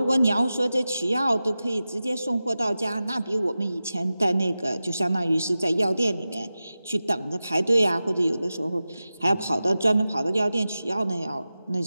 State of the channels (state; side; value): inverted; both; correlation -0.94